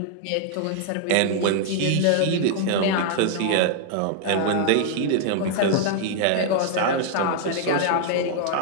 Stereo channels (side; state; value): both; different; correlation 0.00